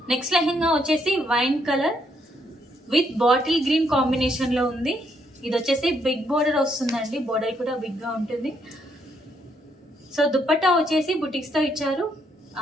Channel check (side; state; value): both; normal; correlation 0.73